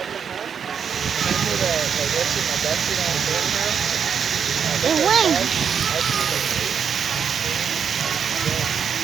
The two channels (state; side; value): quieter; left; 7.2 dB